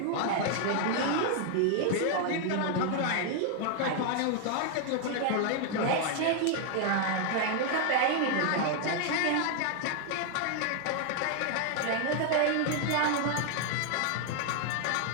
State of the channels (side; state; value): both; different; correlation 0.00